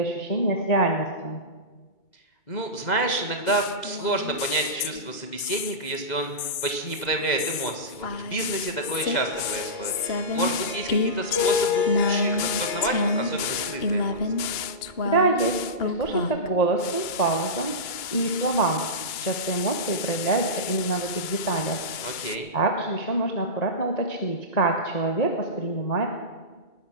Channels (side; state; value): right; late; 2.3 ms